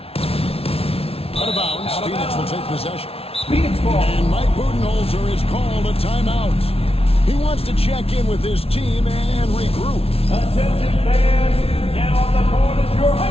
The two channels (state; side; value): late; right; 0.28 ms